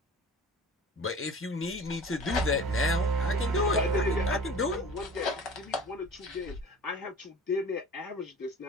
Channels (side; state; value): both; normal; correlation 0.42